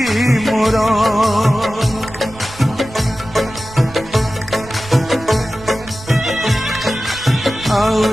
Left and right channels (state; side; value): noise; right; rumble, 17 dB below the sound